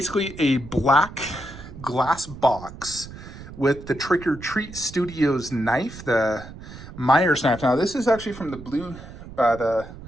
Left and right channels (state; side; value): noise; right; rumble, 15 dB below the sound